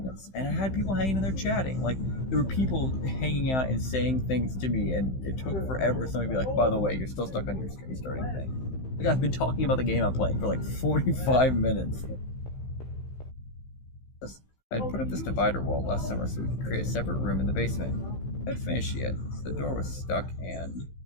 And I had people hanging in there chatting. Like, there were people hanging out and saying things to me, and it took forever for somebody to be like, by the way, you're still stuck on your stream starting thing. Like, I've been talking about the game I'm playing for, like, 45 minutes. I'd put up this divider wall last summer so we could create a separate room in the basement. I'd finished yet, so the door was stuck and the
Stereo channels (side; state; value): right; late; 15 ms